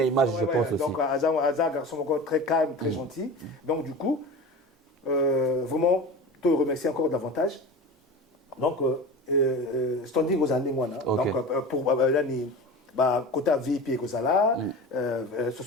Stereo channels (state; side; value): normal; both; correlation 0.32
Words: image, je pense aussi. Donc, Azar, garçon encore très calme, très gentil. Donc, du coup, vraiment, je te remercie encore davantage. Donc, standing aux années, donc, pour l'année. Côté VIP et Kozala,